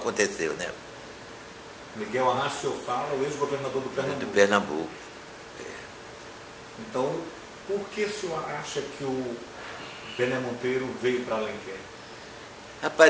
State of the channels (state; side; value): identical; both; correlation 1.00